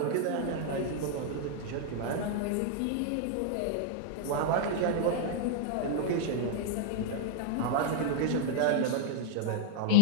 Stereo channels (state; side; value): different; both; correlation -0.01